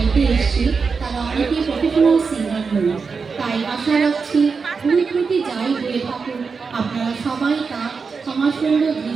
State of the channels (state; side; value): quieter; left; 5.1 dB